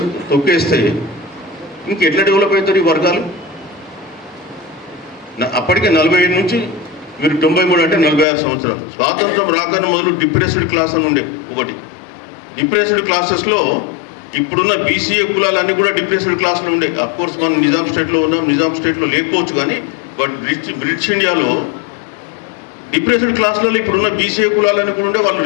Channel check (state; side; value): drops out; right; at 8.2 s